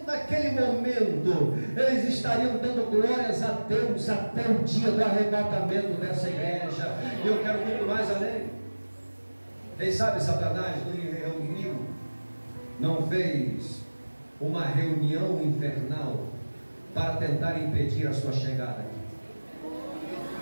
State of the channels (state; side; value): inverted; both; correlation -1.00